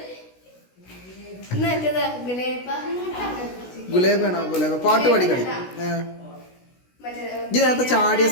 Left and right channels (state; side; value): late; right; 16 ms